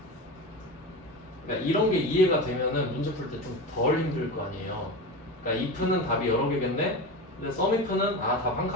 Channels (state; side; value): normal; both; correlation 0.25